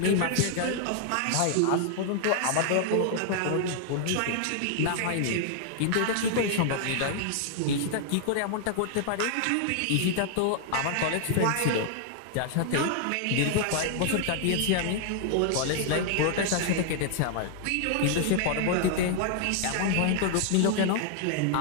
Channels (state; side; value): different; both; correlation 0.00